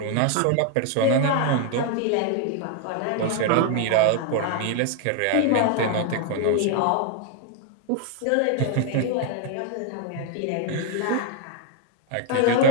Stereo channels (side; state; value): both; different; correlation 0.01